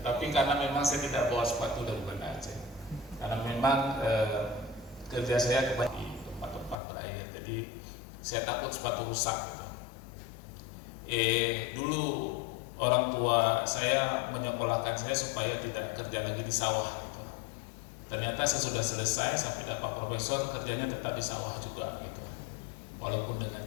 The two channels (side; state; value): right; drops out; at 6.8 s